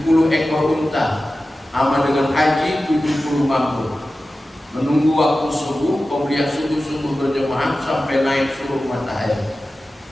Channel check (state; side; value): normal; both; correlation 0.94